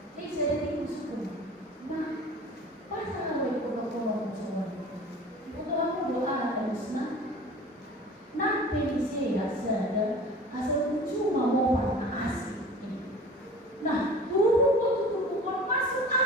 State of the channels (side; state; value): both; normal; correlation 0.41